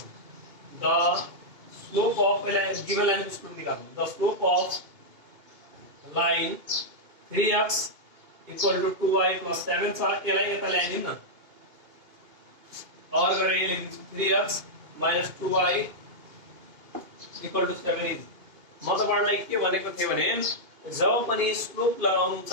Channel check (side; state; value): left; late; 2.5 ms